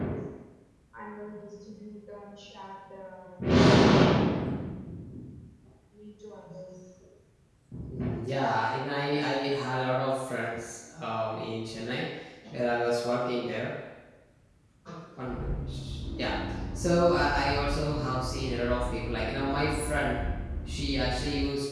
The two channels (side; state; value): both; identical; correlation 1.00